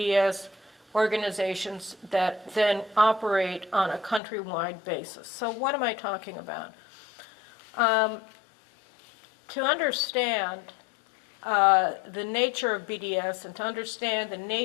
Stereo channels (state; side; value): drops out; right; at 4.2 s